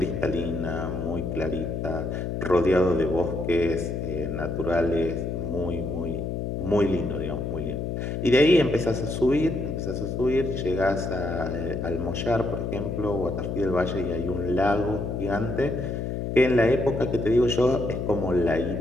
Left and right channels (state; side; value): noise; left; hum, 3 dB below the sound